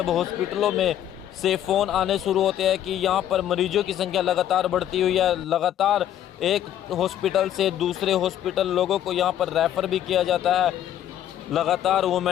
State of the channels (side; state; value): right; quieter; 11.2 dB